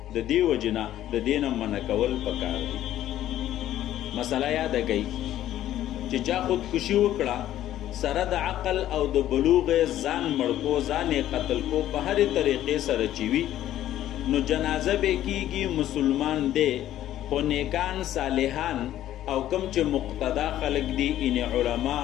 د دې وجې نه د دې نه منع کول پکار دي. مسله یاده کړئ چې چا خودکشي وکړه سره د عقل او د بلوغ ځان مړ کو ځان قتل کو په هرې طریقې سره چې وي نو جنازه به کیږي مسلمان دی خو نیکان صالحان او کم چې مقتدا خلق دي ان علما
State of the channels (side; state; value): right; quieter; 12.7 dB